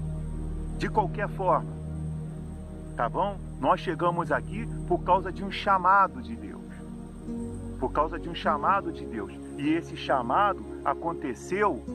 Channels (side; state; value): both; identical; correlation 1.00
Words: De qualquer forma. Tá bom? Nós chegamos aqui por causa de um chamado de Deus. Por causa de um chamado de Deus. E esse chamado aconteceu